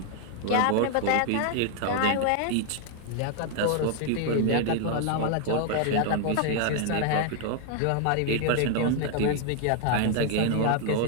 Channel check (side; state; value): both; different; correlation 0.00